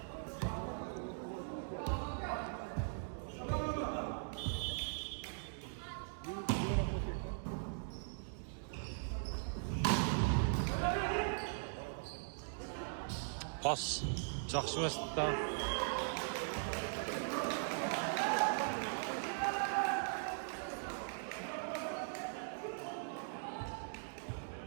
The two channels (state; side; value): silent; left; digital silence